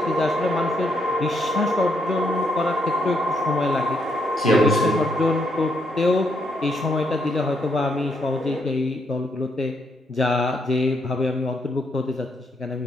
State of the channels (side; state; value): both; normal; correlation 0.76